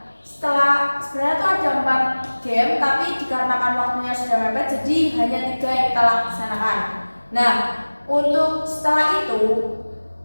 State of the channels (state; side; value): inverted; both; correlation -1.00